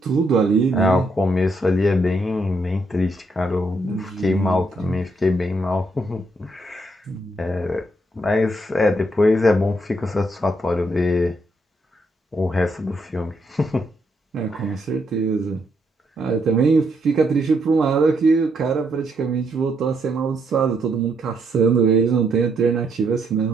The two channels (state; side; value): normal; both; correlation 0.75